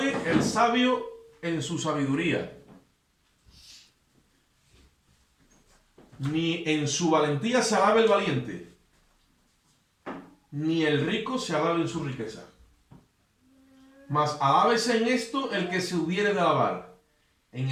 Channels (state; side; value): identical; both; correlation 1.00